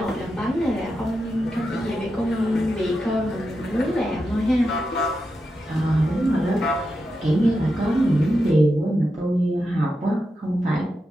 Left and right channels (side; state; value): both; normal; correlation 0.88